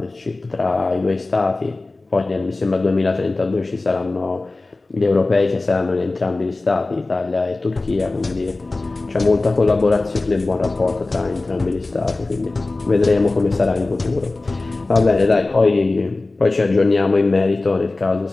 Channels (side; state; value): right; quieter; 3.2 dB